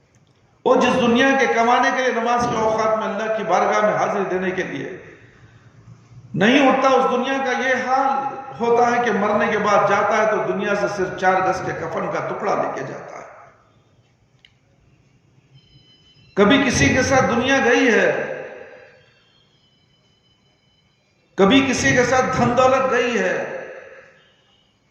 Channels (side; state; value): both; identical; correlation 1.00